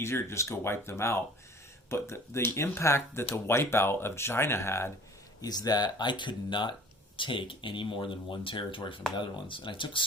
to just go wipe them out. But the impact that the wipeout of China had is that I could not take any more than 1 territory from the Netherlands. And I took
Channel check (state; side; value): normal; both; correlation 0.47